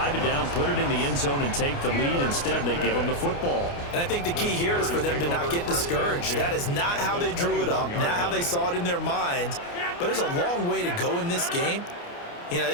it down, put it in the end zone, and take the lead. Instead, they give them the football. And I think the key here is for them to not get discouraged. That is not how they drew it up, not how they saw it in their minds. but there's a long way to go in this game. You know,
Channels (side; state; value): right; late; 29 ms